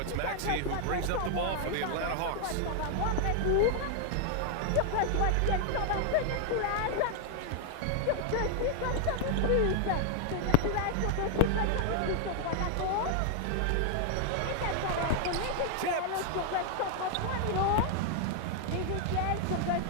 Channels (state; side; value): different; both; correlation 0.00